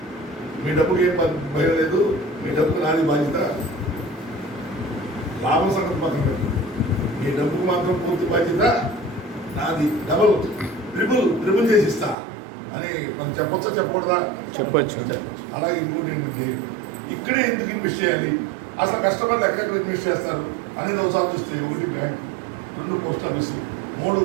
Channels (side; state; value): left; drops out; at 12.2 s